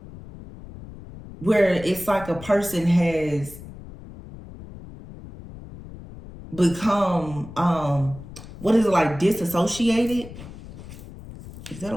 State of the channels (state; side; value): noise; left; rumble, 15 dB below the sound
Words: where it's like a person has become what is it, like disassociated? Is that a